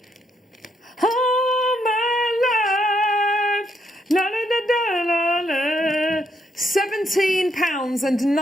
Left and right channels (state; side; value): normal; both; correlation 0.76